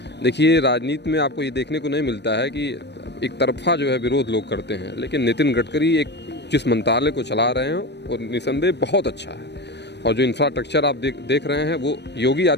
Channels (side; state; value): right; late; 0.50 ms